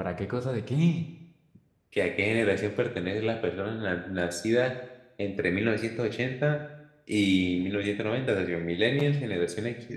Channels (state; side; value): identical; both; correlation 1.00